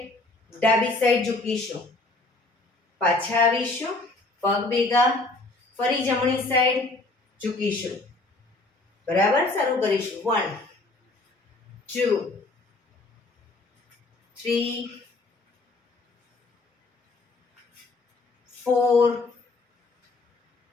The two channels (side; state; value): right; quieter; 3.1 dB